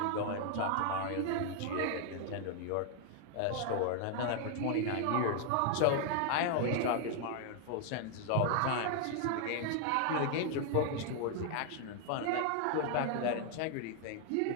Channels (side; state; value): both; different; correlation 0.00